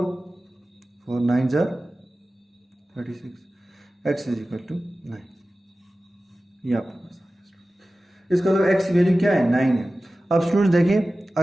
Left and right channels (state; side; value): normal; both; correlation 0.96